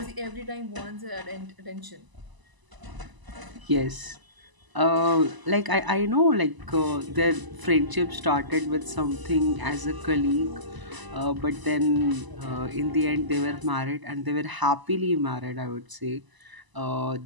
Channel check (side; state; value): left; late; 1.0 ms